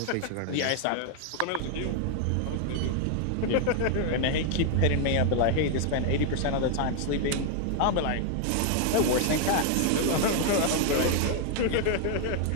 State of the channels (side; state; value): both; different; correlation 0.00